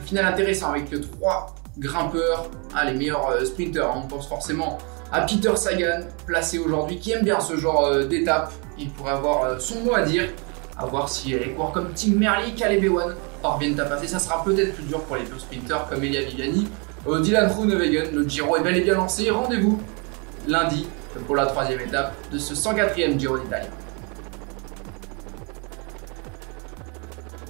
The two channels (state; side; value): quieter; left; 33.7 dB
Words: final intéressant avec 3 grimpeurs, les meilleurs sprinteurs. On pense forcément à Peter Sagan, placé aujourd'hui, qui aime bien ce genre d'étape. Il pourrait avoir son mot à dire. À voir si les coureurs comme Tim Merlier, Caleb Ewan parviennent à passer. Ça sera peut-être plus dur pour les deux sprinteurs comme Elia Viviani. Dylan Groenewegen, le Giro est bel et bien lancé. Rendez-vous lundi pour la 3e étape de ce 104e Giro d'Italie.